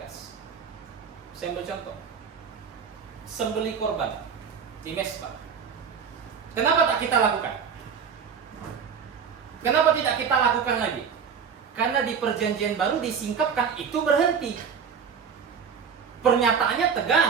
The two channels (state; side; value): quieter; left; 6.7 dB